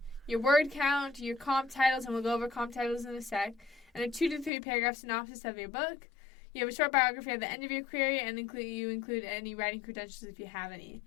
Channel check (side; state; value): right; drops out; at 4.5 s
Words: your word count, your comp titles, and we'll go over comp titles in a sec, and a 2 to 3 paragraph synopsis of your book. You have a short biography at the end of your query, and you include any writing credentials if you have any.